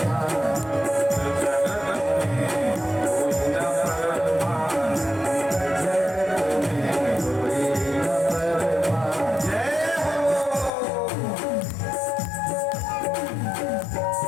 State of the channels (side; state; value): right; drops out; at 10.7 s